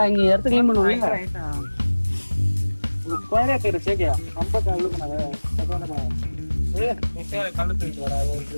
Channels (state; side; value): inverted; both; correlation -1.00